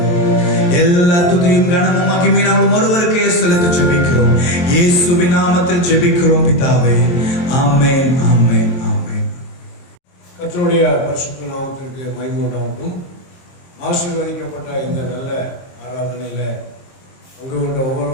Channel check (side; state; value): right; late; 23 ms